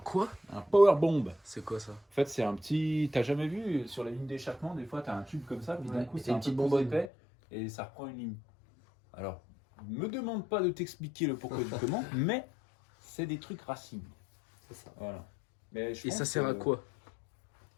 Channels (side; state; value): right; drops out; at 7.1 s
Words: Un powerbomb. C'est quoi ça? En fait, c'est un petit. T'as jamais vu sur la ligne d'échappement, des fois, t'as un tube comme ça, puis d'un Ouais, coup, et c'est un une petite peu plus bonbonne. épais et ça reprend une ligne. Alors, me demande pas de t'expliquer le pourquoi du comment, mais c'est des trucs racines. C'est ça. Voilà. Mais je Et pense ça sert à que- quoi?